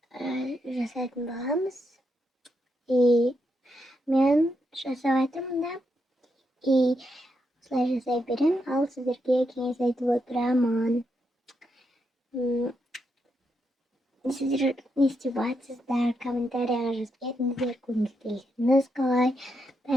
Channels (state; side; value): normal; both; correlation 0.82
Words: жасайтын боламыз. Мен жасап жатырмын да. Осылай жасай берем, ал сіздерге кеңес айтып отырамын. Сіздер не істеп жатсыздар? Комментарияға жазып кетіңіздер, көргіңіз келсеңіз қалай.